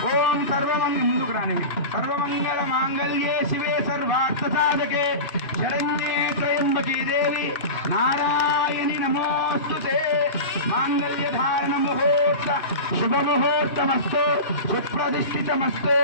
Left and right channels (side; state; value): right; late; 2.9 ms